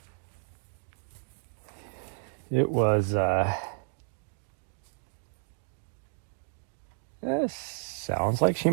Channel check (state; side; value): silent; left; digital silence